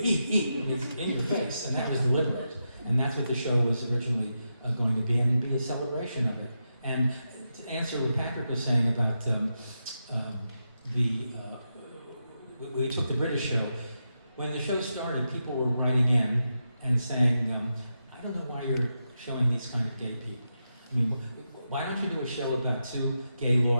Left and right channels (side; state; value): both; inverted; correlation -0.87